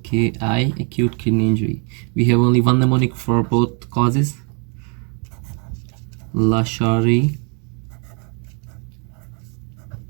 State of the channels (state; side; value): quieter; left; 38.1 dB